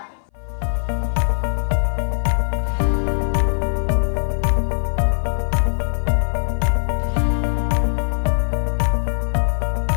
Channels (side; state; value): right; silent; 60 dB below the other